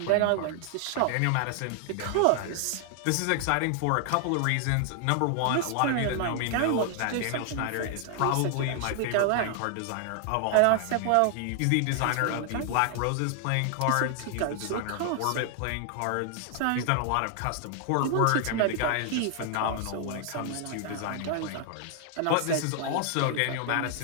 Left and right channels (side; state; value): both; different; correlation 0.00